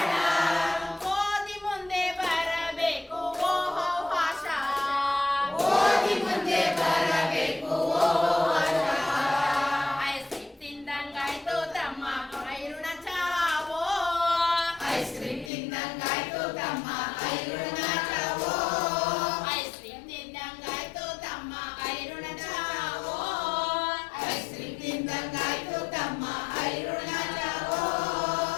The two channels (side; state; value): right; drops out; at 15.5 s